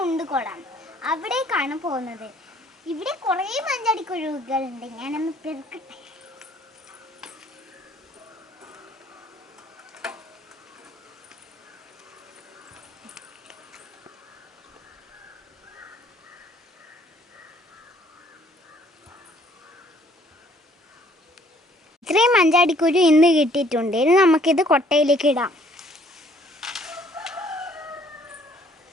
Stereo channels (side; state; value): both; normal; correlation 0.61